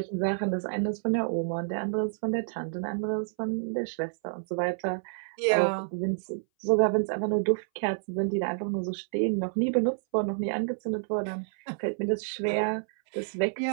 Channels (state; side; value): silent; left; 59 dB below the other